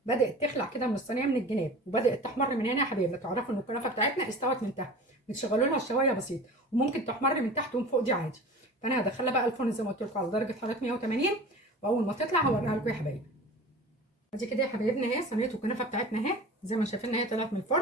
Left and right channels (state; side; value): normal; both; correlation 0.38